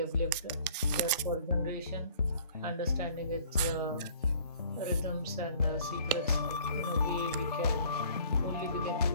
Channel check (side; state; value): both; inverted; correlation -0.54